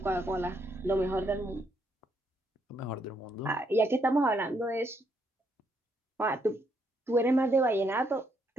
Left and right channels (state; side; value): normal; both; correlation 0.74